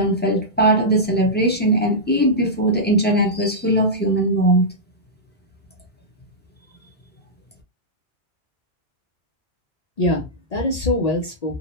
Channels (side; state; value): both; normal; correlation -0.12